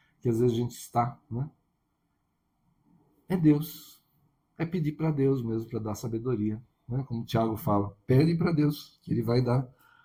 que às vezes a gente está, né? É Deus. É pedir para Deus mesmo, para dar sabedoria. Né? Como o Tiago fala, pede para Deus, que ele vai dar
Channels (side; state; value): both; identical; correlation 1.00